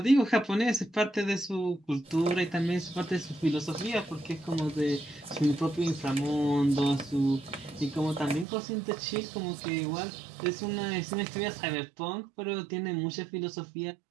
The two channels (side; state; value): left; drops out; at 8.5 s